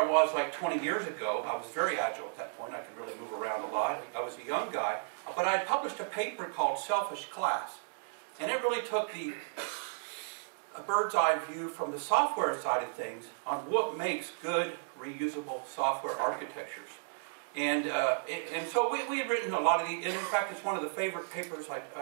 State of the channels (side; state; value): left; silent; digital silence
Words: was like 20 years ago. I was very agile at that point. I could really move around a lot. I was a young guy. But I published a paper called Selfish Class. And it really took a bird's eye view from the software side of things on what makes good, reusable software architectures. And so we had written a lot of these. And in fact, it's one of the favorite papers